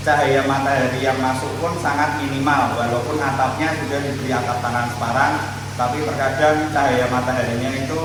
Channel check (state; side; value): identical; both; correlation 1.00